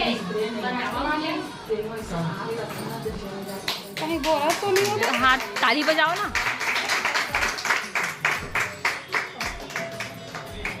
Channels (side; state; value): both; identical; correlation 1.00